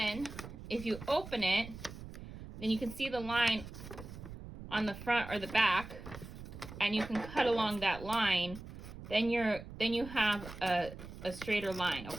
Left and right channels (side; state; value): right; noise; rumble, 12 dB below the sound